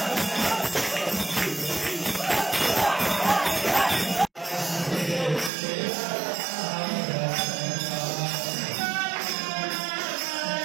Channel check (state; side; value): drops out; left; at 5.5 s